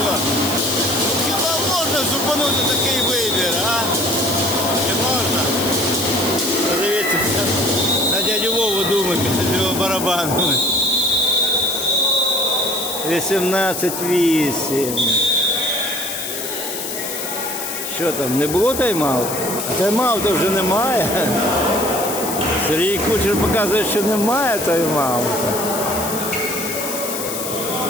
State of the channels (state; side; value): noise; left; hiss, 5 dB below the sound